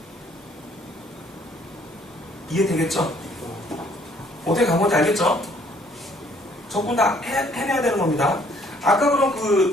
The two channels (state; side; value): normal; both; correlation 0.62